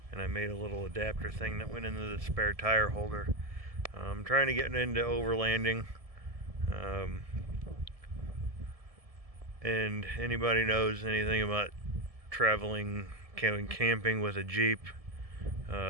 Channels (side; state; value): left; late; 1.7 ms